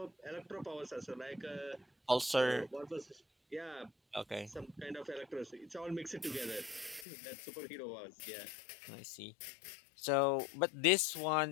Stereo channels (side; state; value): right; drops out; at 7.1 s